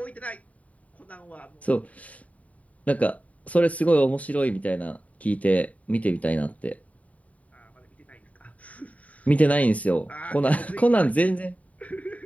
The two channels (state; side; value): late; right; 0.069 ms